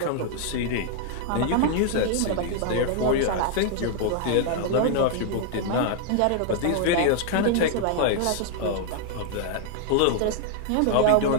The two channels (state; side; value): different; both; correlation 0.00